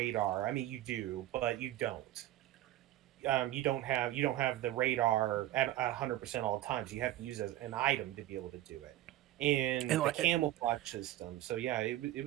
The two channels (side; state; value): left; quieter; 14.5 dB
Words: I mean, you do, but you don't. You don't have the radar at 100% all the times. You have to use an item to be able to do it, And and the like, camouflage system. So yeah, it